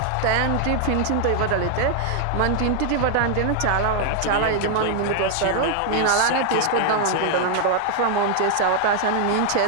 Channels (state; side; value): different; both; correlation 0.00